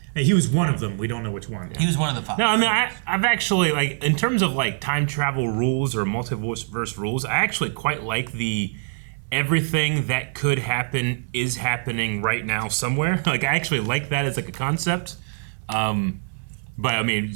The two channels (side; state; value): left; silent; 62 dB below the other